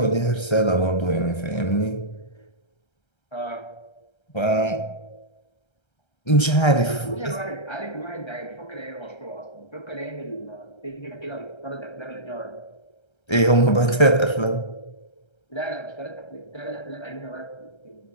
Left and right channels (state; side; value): late; right; 1.3 ms